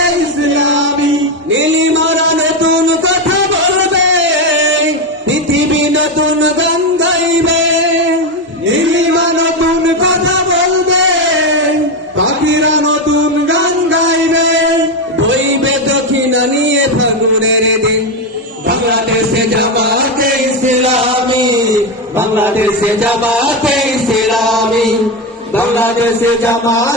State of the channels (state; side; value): normal; both; correlation 0.11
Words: ইসলামী। নীলিমারা নতুন কথা বলবে, পৃথিবী নতুন গান গাইবে, নীলিমা নতুন কথা বলবে, পাখিরা নতুন গান গাইবে, বইবে দক্ষিণা নিয়ে ফাগুনের দিন। বাংলাদেশে জামাতে ইসলামী, বাংলাদেশে জামাতে ইসলামী, বাংলাদেশে